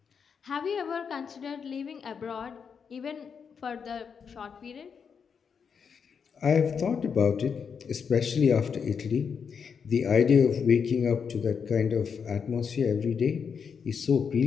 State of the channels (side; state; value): right; quieter; 6.5 dB